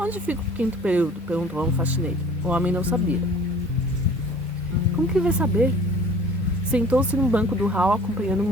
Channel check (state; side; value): normal; both; correlation 0.48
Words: fica o 5º período? Perguntou a um faxineiro. O homem não sabia. Como que ele vai saber? Sentou-se no banco do hall acompanhando o